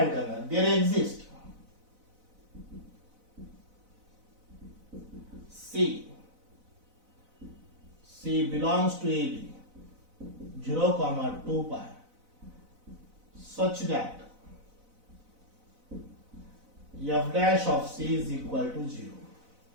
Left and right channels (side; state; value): left; late; 4.0 ms